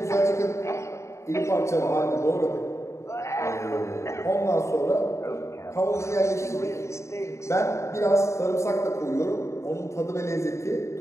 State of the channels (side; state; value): right; late; 0.14 ms